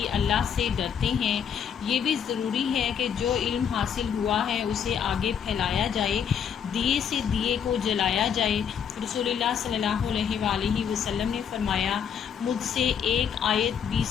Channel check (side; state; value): right; quieter; 7.9 dB